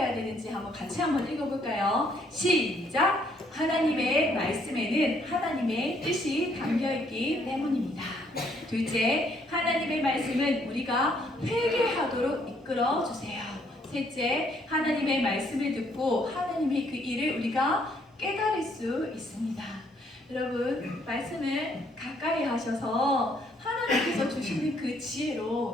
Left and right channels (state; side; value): normal; both; correlation 0.68